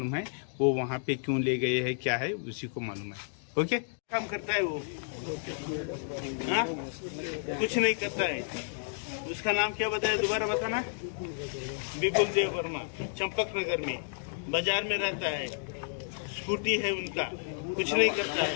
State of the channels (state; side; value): silent; right; digital silence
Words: है वो वहाँ पे क्यों ले गए हैं, क्या है उसी को मालूम है। ओके, काम करता है वो? हाँ, कुछ नहीं करता है। उसका नाम क्या बताया, दोबारा बताना? विपुल देव वर्मा, चंपक नगर में बाजार में रहता है, स्कूटी है उनका, कुछ नहीं करता